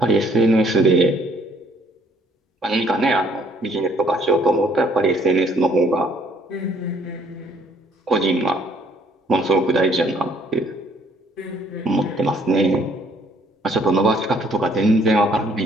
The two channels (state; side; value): normal; both; correlation 0.63